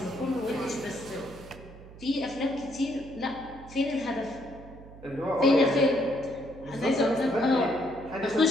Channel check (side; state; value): right; noise; hum, 18 dB below the sound